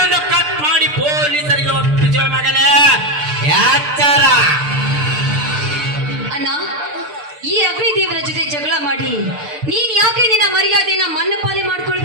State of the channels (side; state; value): left; late; 6.7 ms